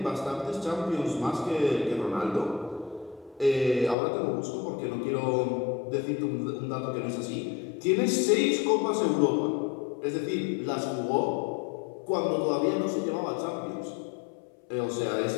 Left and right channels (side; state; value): right; drops out; at 4.0 s